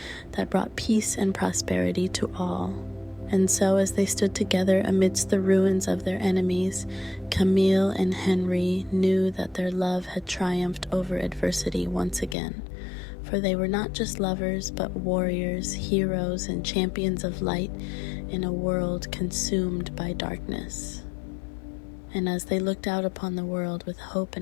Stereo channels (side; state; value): right; drops out; at 12.4 s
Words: that brought peace and prosperity to all. And so, as they stood together amidst the ruins of their enemies, Camille and Henri knew that their love had triumphed over adversity once again. For they were not just lovers, but warriors, heroes, and champions of light in a world consumed by darkness. And as they looked out upon the world with hope